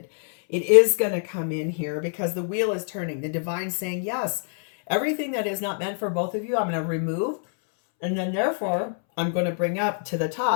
It is going to come in here because the wheel is turning. The divine saying, yes, everything that is not meant for both of you, I'm going to remove. And then therefore, I'm going to bring up to the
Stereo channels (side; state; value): right; silent; 62 dB below the other